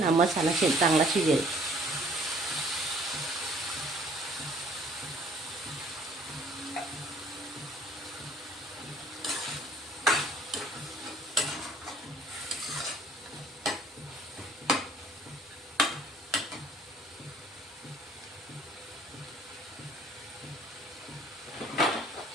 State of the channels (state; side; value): normal; both; correlation 0.58